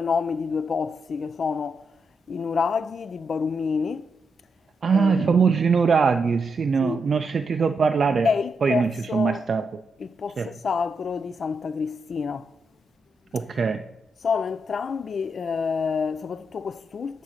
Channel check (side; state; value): both; normal; correlation 0.83